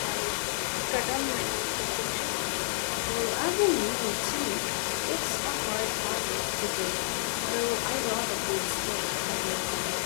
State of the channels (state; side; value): silent; right; digital silence